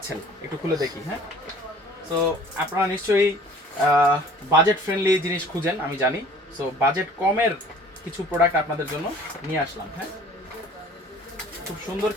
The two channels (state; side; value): normal; both; correlation 0.50